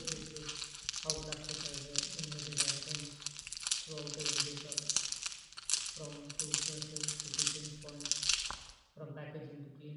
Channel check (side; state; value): both; identical; correlation 1.00